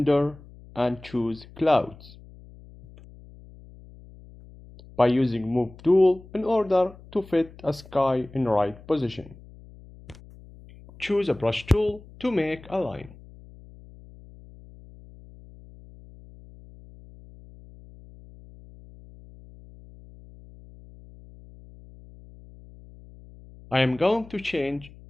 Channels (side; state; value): left; noise; hum, 21 dB below the sound